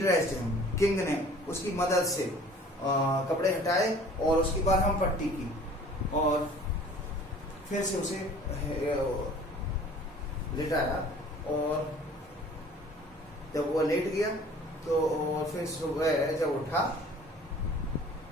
him. King ने उसकी मदद से कपड़े हटाए और उसकी बरहम पट्टी की और फिर से उसे लिटाया। और जब वो लेट गया तो फिर सुबह जब उठा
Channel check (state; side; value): normal; both; correlation 0.49